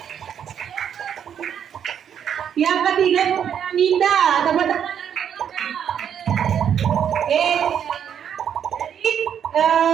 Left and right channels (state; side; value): quieter; left; 8.6 dB